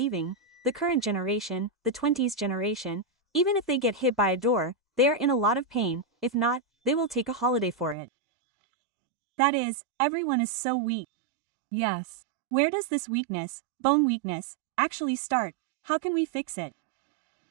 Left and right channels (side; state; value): left; drops out; at 8.0 s